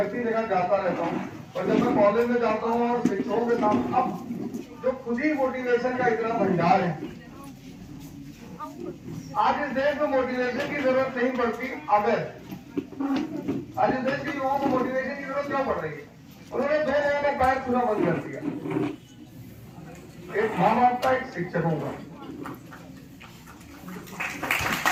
इसी जगह जाता रहता हूँ और जब मैं कॉलेज में जाता हूँ और शिक्षकों के साथ, अब जो खुद ही मोटिवेशन का इतना भंडार है, आज इस देश में मोटिवेशन की जरूरत नहीं पड़ती। अगर आज इस देश के युवाओं को मोटिवेशन की जरूरत क्यों पड़ रही है? उन्होंने दो लोगों का पैर छूना बंद कर दिया, एक माँ बाप का, एक शिक्षकों का।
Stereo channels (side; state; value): both; identical; correlation 1.00